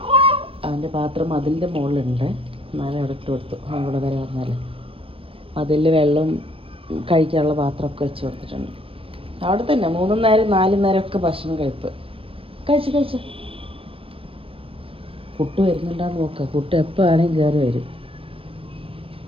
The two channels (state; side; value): late; left; 0.27 ms